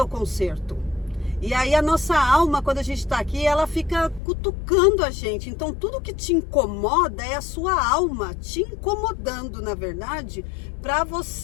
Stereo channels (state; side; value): drops out; right; at 4.2 s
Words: conserto. E aí a nossa alma, quando a gente está aqui, ela fica cutucando a gente. Então tudo que te incomoda é a sua alma te incomodando, na verdade, para